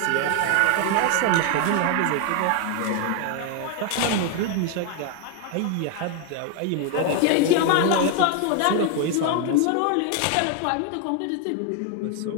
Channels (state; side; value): different; both; correlation 0.00